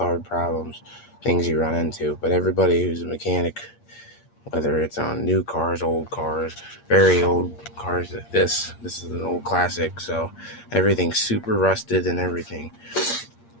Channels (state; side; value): late; right; 8.6 ms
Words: hard problems, things you run into. But everybody who's a mechanic, whether it's on new cars, old cars, very old cars, this is an old classic. So everything's super rusted and everything.